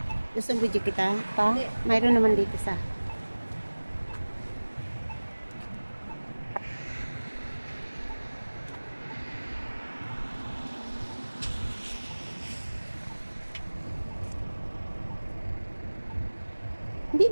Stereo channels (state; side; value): inverted; both; correlation -1.00